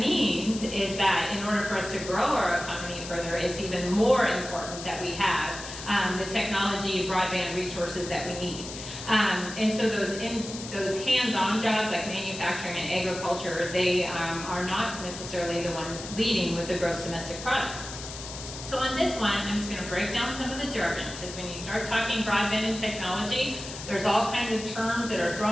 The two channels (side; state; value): left; noise; hiss, 11 dB below the sound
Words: is that in order for us to grow our economy further, it's even more important that we have the technology, broadband resources that we need. And so those hands-on jobs like manufacturing and agriculture, they are not necessarily the ones leading with the gross domestic product. So on this one, I'm just going to break down some of the jargon, because when you start talking broadband and technology, there's all kinds of terms that are